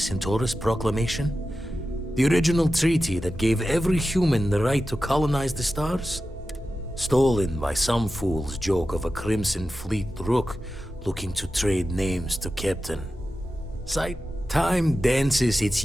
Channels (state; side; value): normal; both; correlation 0.92